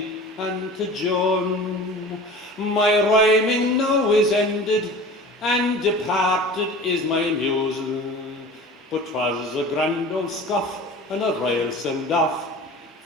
and to Joan. My rhyming now is ended, and departed is my muse, but 'twas a grand old scoff and a royal send-off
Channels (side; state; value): both; normal; correlation 0.39